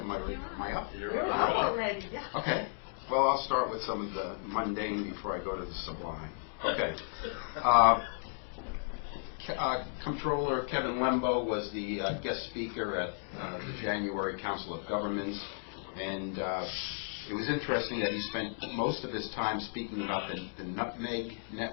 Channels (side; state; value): right; silent; digital silence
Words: I up? You're up already, yeah. Okay. Well, I'll start with some of the mundane before I go to the sublime. Okay. Comptroller Kevin Lembo was the guest speaker at the January Council of Governments, and it was interesting that he spent most of his time speaking about the Nutmeg